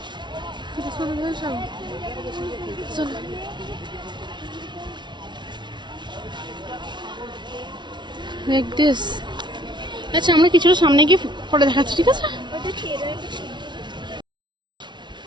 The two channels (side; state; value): left; late; 0.22 ms